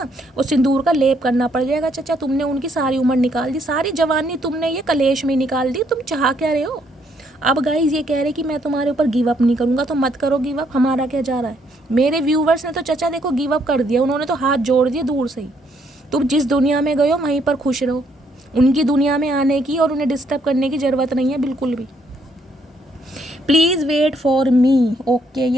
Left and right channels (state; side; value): normal; both; correlation 0.70